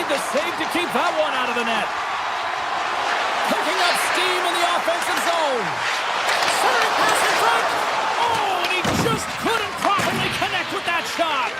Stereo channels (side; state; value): both; identical; correlation 1.00